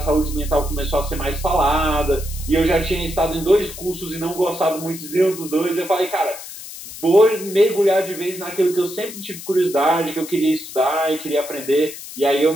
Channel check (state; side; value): noise; left; hiss, 12 dB below the sound